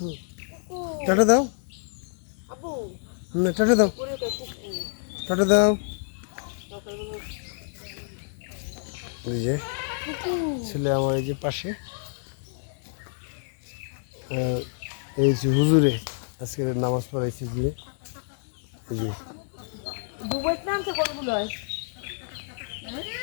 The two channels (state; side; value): silent; right; digital silence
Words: টাটা দাও। টাটা দাও, টাটা দাও। এই যে ছেলে আমার এই যে পাশে, এই যে হুজুরে আজকে নামাজ পড়াইছে গিয়ে। এই যে